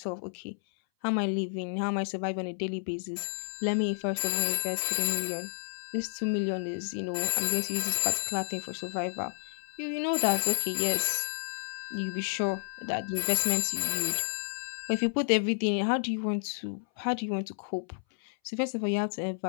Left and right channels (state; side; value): silent; right; 57 dB below the other